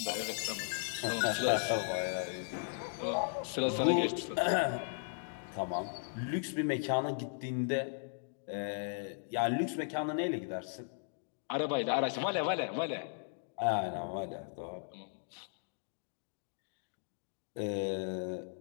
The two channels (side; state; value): right; silent; digital silence